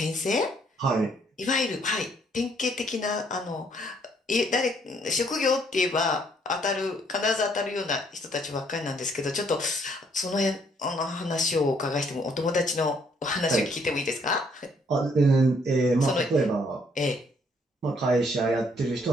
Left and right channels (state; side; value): normal; both; correlation 0.67